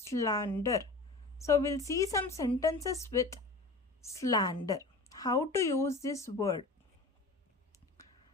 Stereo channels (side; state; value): right; quieter; 3.2 dB